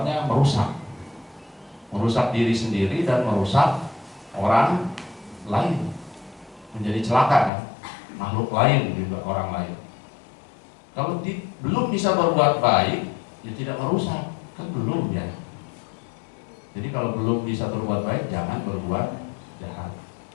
merusak diri sendiri dan merusak orang lain, menjadi celaka kan, makhluk lain juga, orang lain. Kalau belum bisa berbuat baik, ya tidak merusak, kan belum ya. Jadi kalau belum bisa berbuat baik, jangan berbuat jahat,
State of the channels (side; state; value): right; drops out; at 7.5 s